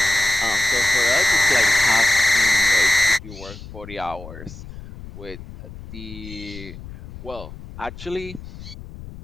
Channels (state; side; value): noise; left; rumble, 14 dB below the sound